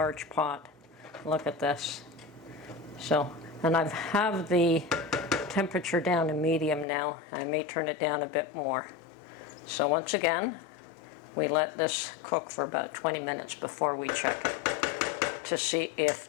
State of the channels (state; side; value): drops out; right; at 6.9 s